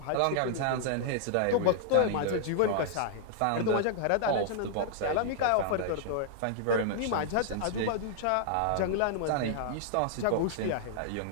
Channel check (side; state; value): both; different; correlation -0.01